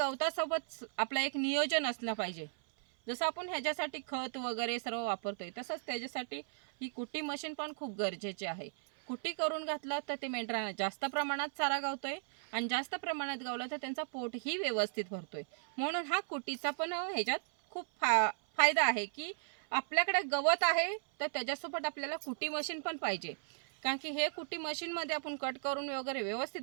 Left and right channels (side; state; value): left; silent; 54 dB below the other